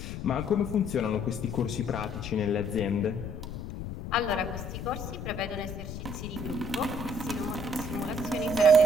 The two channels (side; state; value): left; noise; rumble, 7 dB below the sound